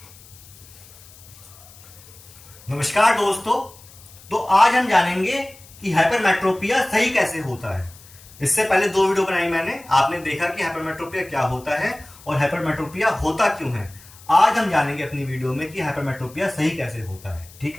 नमस्कार दोस्तों, तो आज हम जानेंगे कि हाइपरमेट्रोपिया सही कैसे होता है। इससे पहले दो वीडियो बनाई मैंने, आपने देखा कि हाइपरमेट्रोपिया क्या होता है और हाइपरमेट्रोपिया होता क्यों है। आज हम जानेंगे अपनी वीडियो में कि हाइपरमेट्रोपिया सही कैसे होता है। ठीक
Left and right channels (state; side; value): noise; left; hiss, 22 dB below the sound